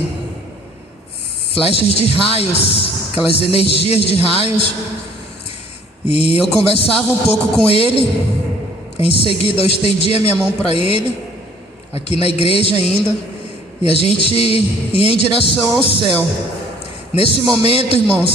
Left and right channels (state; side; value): normal; both; correlation 0.56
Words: flechas de raios, aquelas energias de raios. E eu conversava um pouco com ele. Em seguida eu estendi a minha mão para ele, aqui na igreja ainda, e a gente ia em direção ao céu. Nesse momento,